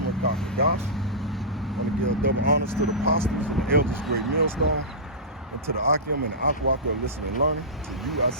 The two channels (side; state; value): both; normal; correlation -0.16